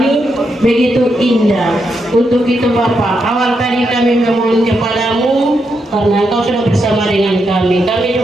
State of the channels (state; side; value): normal; both; correlation 0.82